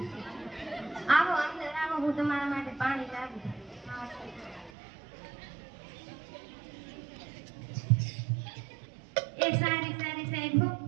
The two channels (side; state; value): left; drops out; at 4.7 s